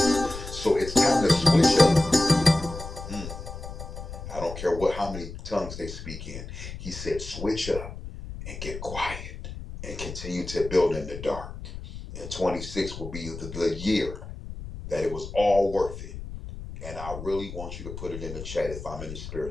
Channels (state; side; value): noise; left; rumble, 10 dB below the sound